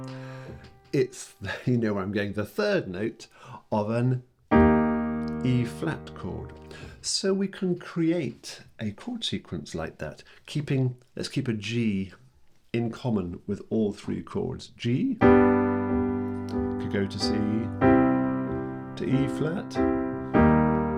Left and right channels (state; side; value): identical; both; correlation 1.00